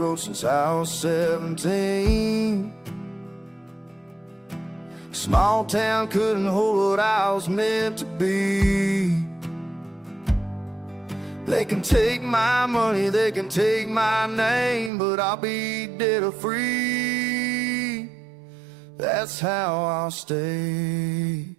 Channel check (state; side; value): drops out; left; at 14.9 s